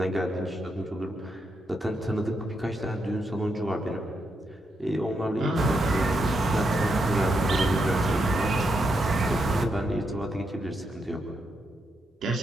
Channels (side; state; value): both; normal; correlation 0.82